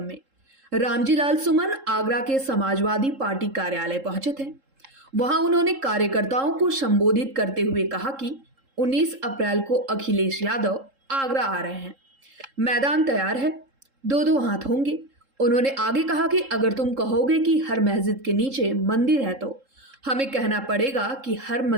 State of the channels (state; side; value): late; left; 3.7 ms